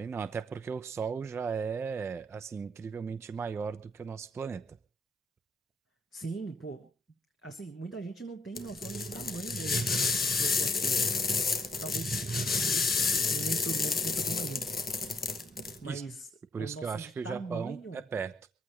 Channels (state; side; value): normal; both; correlation 0.69